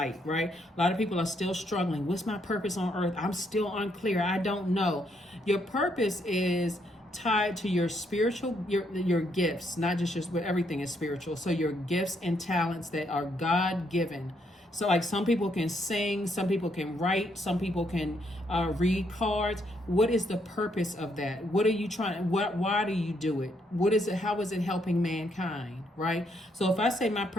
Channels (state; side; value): normal; both; correlation 0.74